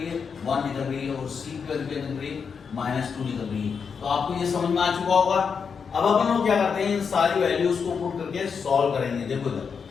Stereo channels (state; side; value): quieter; right; 6.1 dB